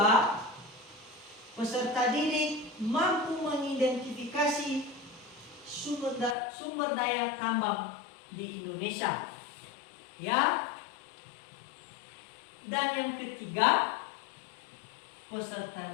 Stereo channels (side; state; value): right; drops out; at 6.4 s